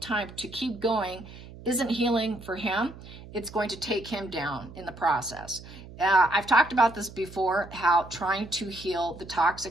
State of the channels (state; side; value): noise; right; hum, 16 dB below the sound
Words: to keep going isn't healing for him. It's going to take him down in the process. I've talked about this before, how trying to heal the